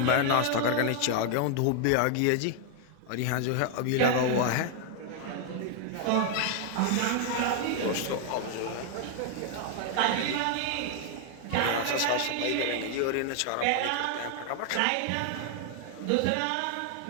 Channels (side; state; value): both; different; correlation 0.00